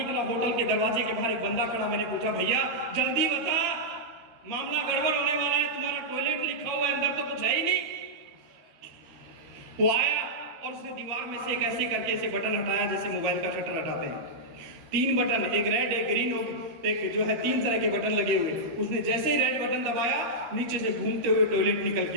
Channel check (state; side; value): late; left; 13 ms